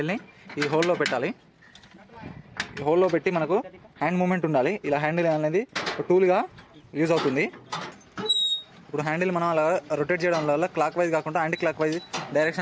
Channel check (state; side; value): identical; both; correlation 1.00